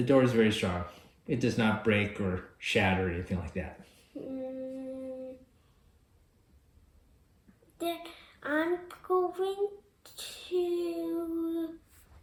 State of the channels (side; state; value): both; identical; correlation 1.00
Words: door is very strong. It does not break or shatter or anything like that. Then I'm going to